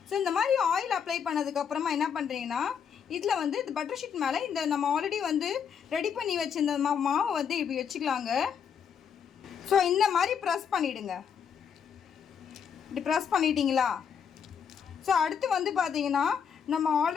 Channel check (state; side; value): quieter; right; 7.3 dB